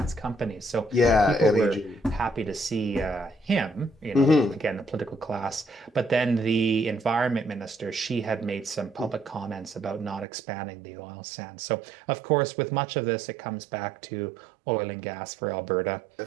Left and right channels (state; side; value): drops out; left; at 10.2 s